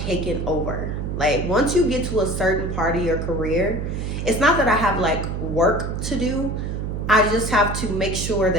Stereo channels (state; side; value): noise; right; hum, 3 dB below the sound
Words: taken over. Like once you get to a certain part of your career, it's not that I have like work to do. I just have to make sure